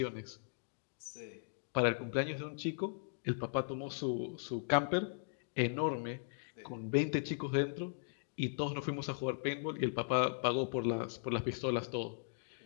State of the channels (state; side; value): silent; right; digital silence